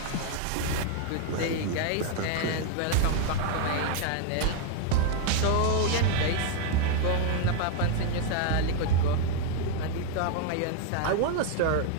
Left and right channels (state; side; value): different; both; correlation 0.01